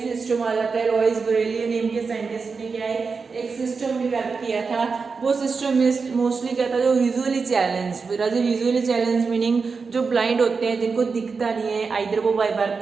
आ जाता है। लॉइस ब्रेली नेम के साइंटिस्ट ने क्या है एक सिस्टम डेवलप किया था। वो सिस्टम में मोस्टली क्या था जो visually challenge, visually challenge meaning जो ब्लाइंड होते हैं जिनको दिखता नहीं है, आइदर वो बाय बर्थ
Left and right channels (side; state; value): left; quieter; 4.9 dB